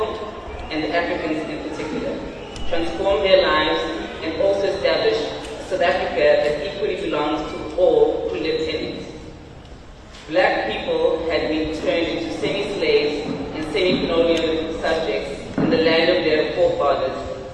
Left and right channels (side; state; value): both; identical; correlation 1.00